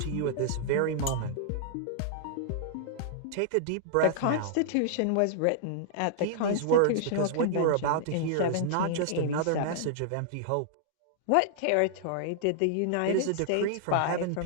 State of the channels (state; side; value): different; both; correlation -0.01